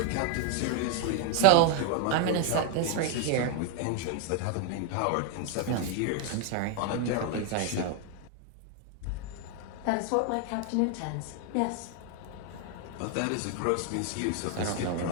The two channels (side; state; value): both; different; correlation 0.01